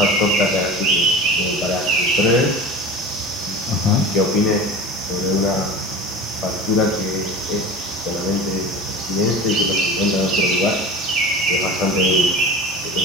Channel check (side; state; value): both; normal; correlation 0.35